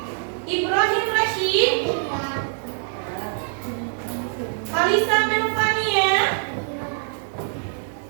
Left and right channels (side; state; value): left; silent; digital silence